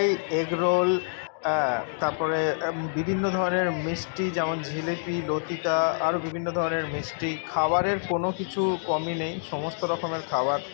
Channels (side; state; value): right; silent; digital silence